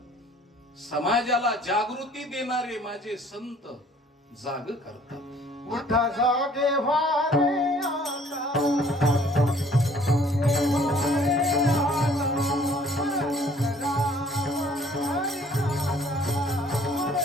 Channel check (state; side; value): normal; both; correlation 0.57